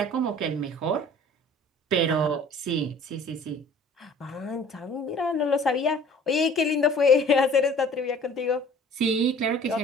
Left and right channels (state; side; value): normal; both; correlation 0.49